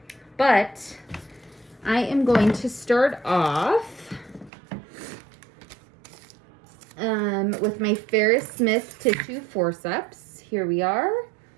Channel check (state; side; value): drops out; left; at 4.5 s